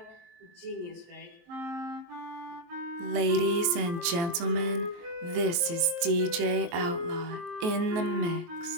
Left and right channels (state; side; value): late; left; 23 ms